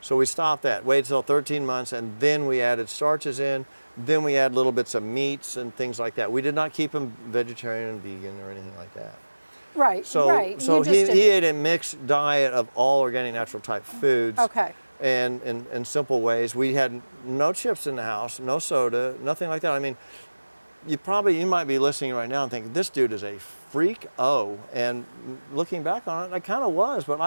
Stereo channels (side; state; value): both; inverted; correlation -1.00